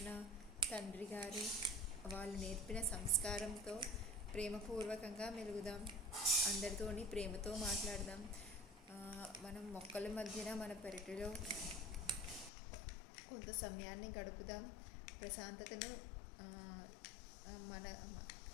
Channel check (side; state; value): right; drops out; at 12.5 s